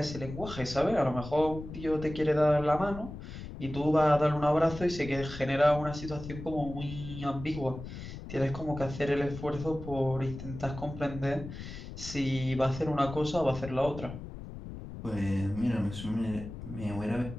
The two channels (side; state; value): left; noise; rumble, 11 dB below the sound